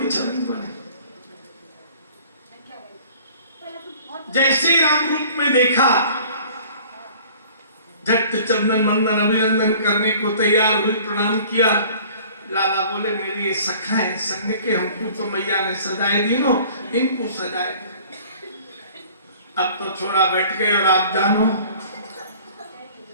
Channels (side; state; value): both; inverted; correlation -0.49